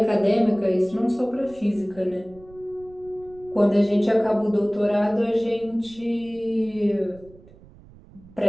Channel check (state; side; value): noise; right; rumble, 23 dB below the sound